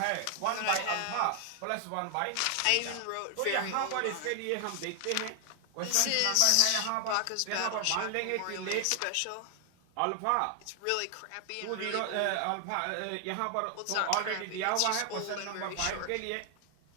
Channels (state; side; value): different; both; correlation 0.00